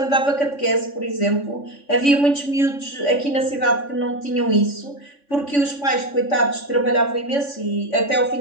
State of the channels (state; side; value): late; right; 3.5 ms